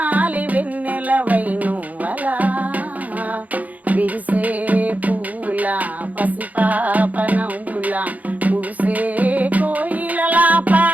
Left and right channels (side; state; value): left; late; 0.077 ms